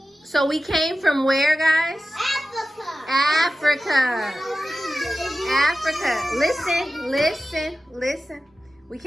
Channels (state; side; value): normal; both; correlation 0.94